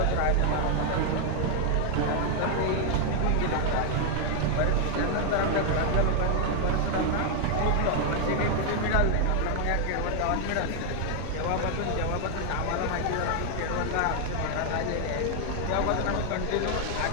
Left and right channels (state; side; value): different; both; correlation 0.00